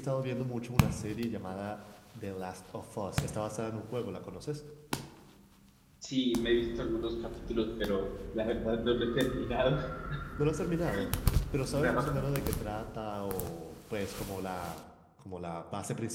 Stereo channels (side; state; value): both; identical; correlation 1.00